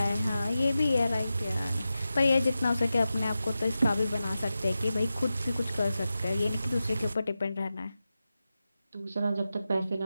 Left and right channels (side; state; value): both; inverted; correlation -0.92